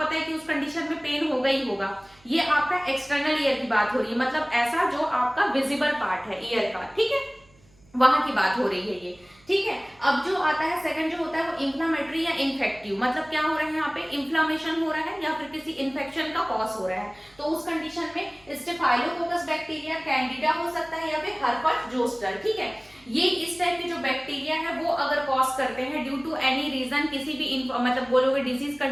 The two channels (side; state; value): right; noise; hum, 30 dB below the sound